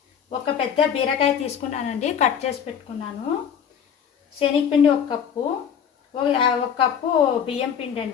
ఒక పెద్ద బీరకాయ తీసుకున్నానండి, కట్ చేసి పెట్టుకున్నాను. శనగపిండి 1 కప్పు, 1 కప్పు బియ్యం పిండి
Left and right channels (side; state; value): right; quieter; 8.0 dB